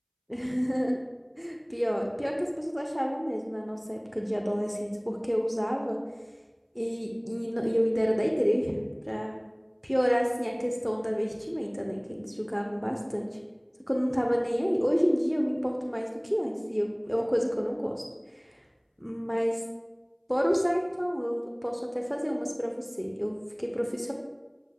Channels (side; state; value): both; identical; correlation 1.00